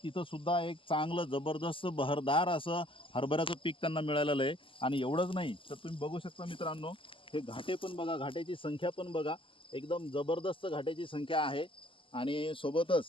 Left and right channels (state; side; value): late; right; 0.25 ms